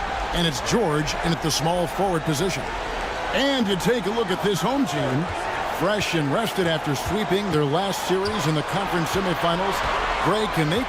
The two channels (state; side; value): identical; both; correlation 1.00